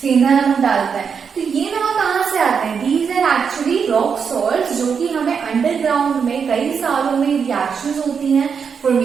सेंधा नमक डालता है। तो ये नमक कहाँ से आते हैं, these are actually rock salt, जो कि हमें अंडरग्राउंड में कई सालों में रिएक्शंस होती हैं,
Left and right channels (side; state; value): left; quieter; 6.4 dB